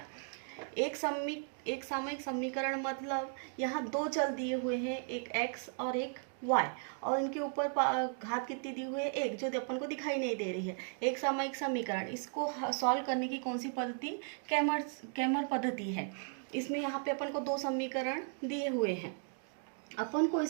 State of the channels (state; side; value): silent; left; 54 dB below the other